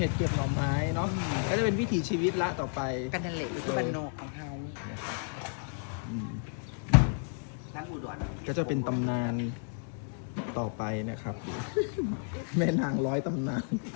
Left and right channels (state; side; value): silent; right; 57 dB below the other